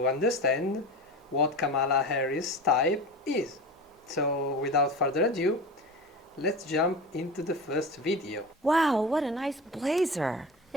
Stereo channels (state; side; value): normal; both; correlation 0.30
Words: understand what Kamala Harris type is. So without further ado, let's jump into the first video. Wow, what a nice blazer.